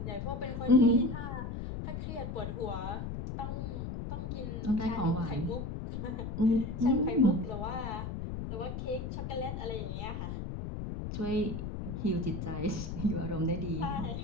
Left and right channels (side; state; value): left; noise; rumble, 5 dB below the sound